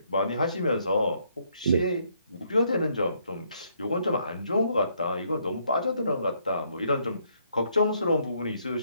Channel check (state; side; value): inverted; both; correlation -0.71